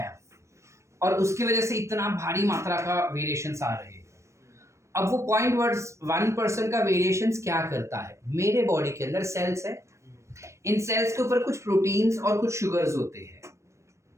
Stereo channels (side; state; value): left; late; 0.14 ms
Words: और उसकी वजह से इतना भारी मात्रा का वेरिएशंस आ रहे हैं। अब वो 0.1% का वेरिएशंस क्या करता है? मेरे बॉडी के अंदर सेल्स है, इन सेल्स के ऊपर कुछ प्रोटीन्स और कुछ शुगर्स होते हैं।